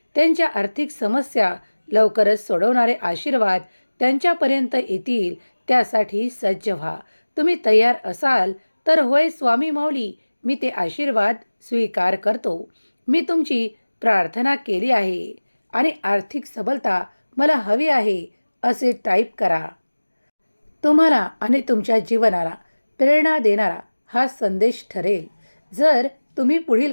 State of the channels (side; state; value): both; inverted; correlation -1.00